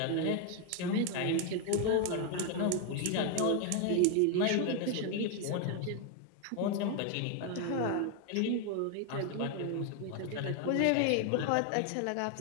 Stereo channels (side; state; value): both; different; correlation 0.01